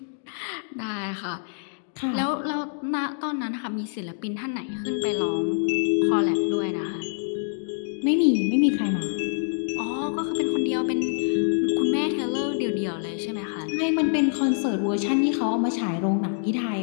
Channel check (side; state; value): right; silent; digital silence